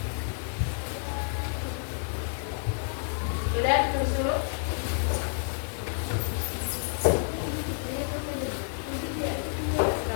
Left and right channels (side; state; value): right; silent; 58 dB below the other